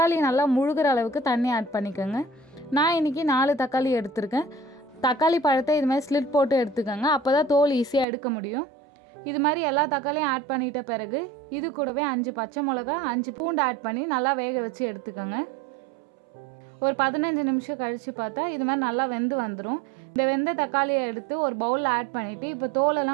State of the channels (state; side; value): drops out; left; at 8.1 s